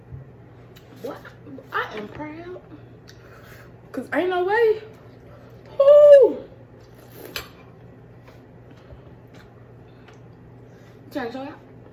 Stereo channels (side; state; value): both; identical; correlation 1.00